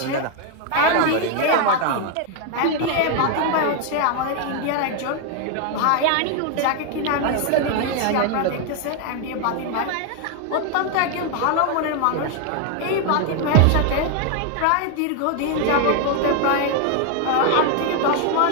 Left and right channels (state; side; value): different; both; correlation 0.01